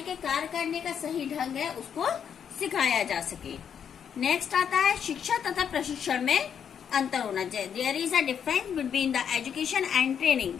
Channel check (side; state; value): right; quieter; 8.0 dB